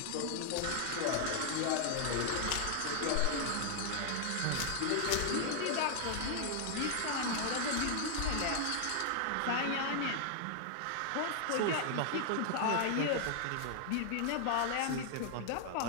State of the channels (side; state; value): both; different; correlation 0.00